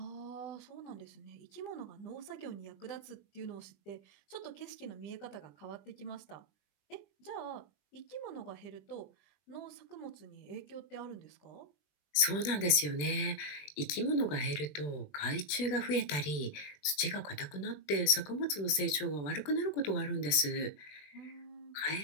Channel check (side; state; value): right; late; 20 ms